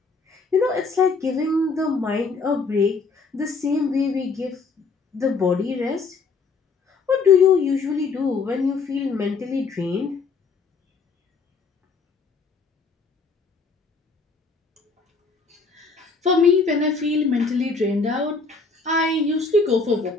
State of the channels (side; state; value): right; quieter; 4.5 dB